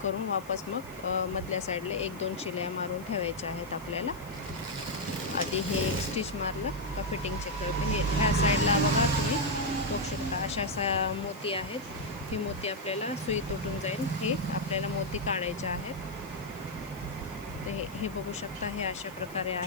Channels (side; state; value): left; noise; hiss, 22 dB below the sound